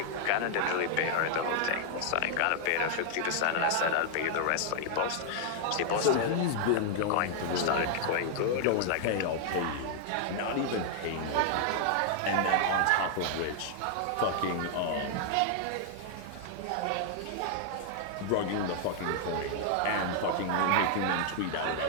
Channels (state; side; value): different; both; correlation 0.00